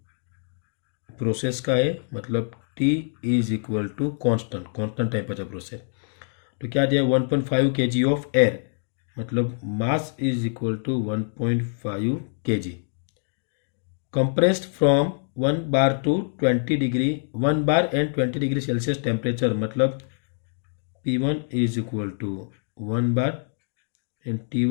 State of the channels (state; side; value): silent; right; digital silence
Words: प्रोसेस का है, मतलब T is equal to constant temperature process. तो क्या दिया, 1.5 kg ऑफ एयर, मतलब mass is equal to 1.5 kg compressed from 1 bar to 20 degree 1 bar and 20 degree Celsius temperature, मतलब P1 is equal to 1 bar and